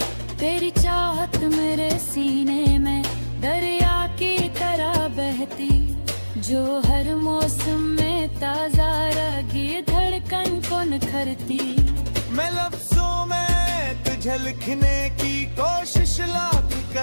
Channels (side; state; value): both; inverted; correlation -1.00